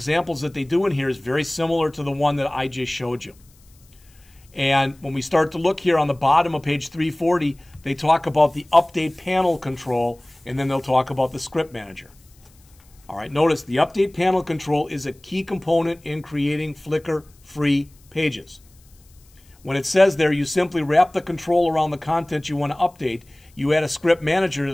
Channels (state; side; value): noise; left; hiss, 30 dB below the sound